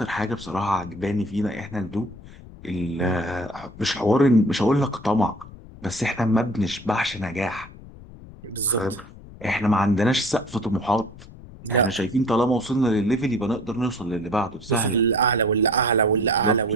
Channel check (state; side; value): noise; left; rumble, 18 dB below the sound